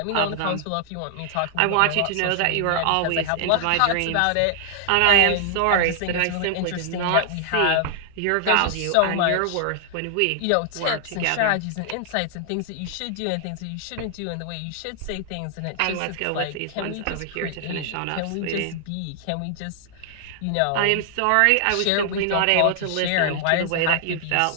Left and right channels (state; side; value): different; both; correlation 0.00